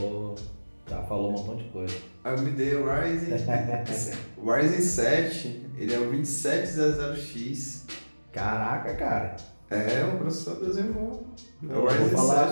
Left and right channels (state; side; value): inverted; both; correlation -1.00